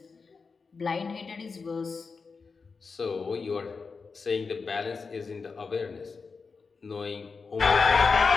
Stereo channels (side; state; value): right; quieter; 4.8 dB